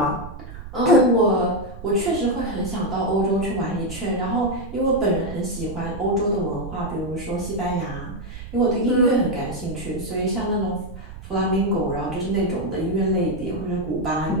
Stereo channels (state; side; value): noise; right; rumble, 12 dB below the sound